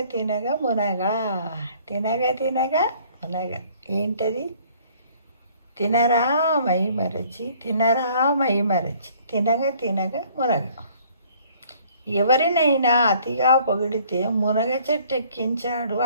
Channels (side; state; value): both; inverted; correlation -0.58